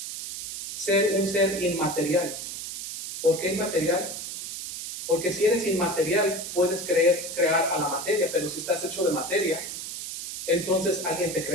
ser un ser inmaterial. ¿Por qué inmaterial? Porque si eres inmaterial puedes crear a la materia, pero si estás hecho de materia, entonces alguien te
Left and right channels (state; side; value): noise; right; hiss, 7 dB below the sound